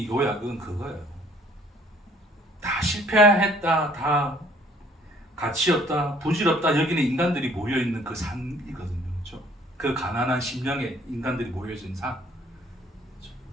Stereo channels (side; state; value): both; normal; correlation 0.59